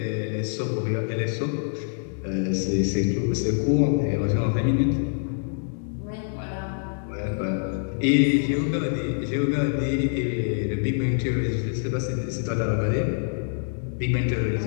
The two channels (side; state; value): right; silent; digital silence